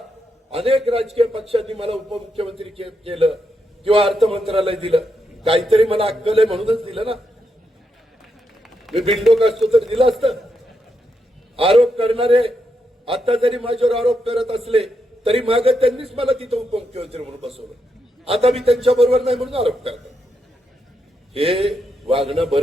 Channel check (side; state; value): both; normal; correlation 0.82